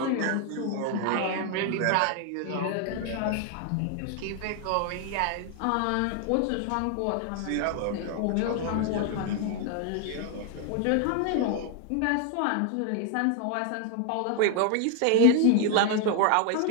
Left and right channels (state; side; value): different; both; correlation 0.00